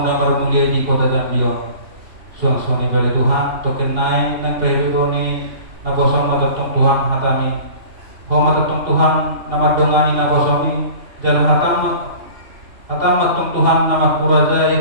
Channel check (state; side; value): late; left; 3.1 ms